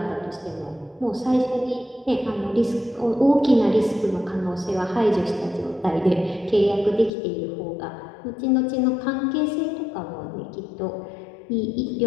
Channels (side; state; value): right; drops out; at 7.1 s